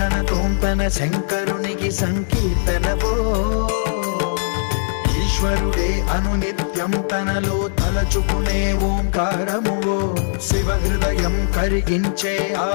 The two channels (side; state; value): right; silent; digital silence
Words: తోంతన శంకరునికి సంకీర్తనవో ఈశ్వరుడే అనునిత్యం తనలో తలచుకునే ఓంకారమువో శివ హృదయం కరిగించే ఆ